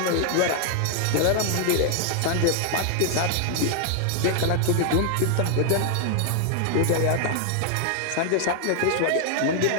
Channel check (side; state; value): both; different; correlation 0.00